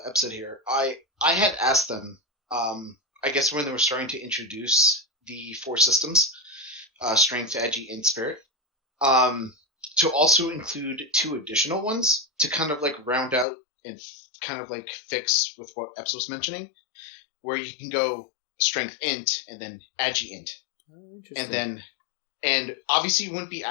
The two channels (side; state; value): right; drops out; at 13.5 s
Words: Ep said here, I had asked them, I guess when they were starting to introduce the 4 systems, strength, agi, and spirit, to also include 2 additional ones to kind of round out and kind of fix with what Ep was mentioning, where you can go strength int and then agi int. Oh, interesting. And obviously it wouldn't be